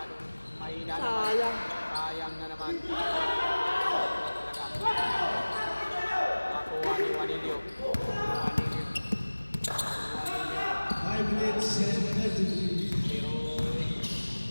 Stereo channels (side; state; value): both; inverted; correlation -1.00